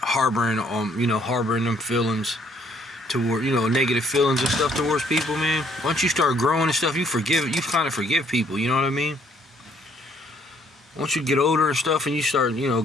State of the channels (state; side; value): normal; both; correlation 0.65